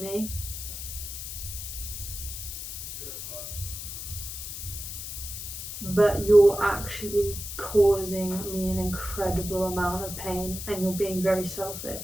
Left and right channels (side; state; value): left; noise; hiss, 7 dB below the sound